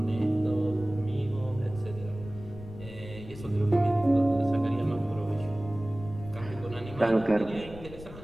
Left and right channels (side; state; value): left; noise; rumble, 15 dB below the sound